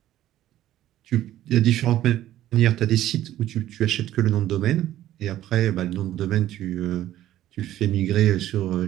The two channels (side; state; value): left; quieter; 13.3 dB